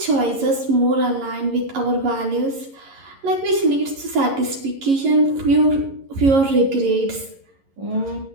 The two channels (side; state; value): left; late; 11 ms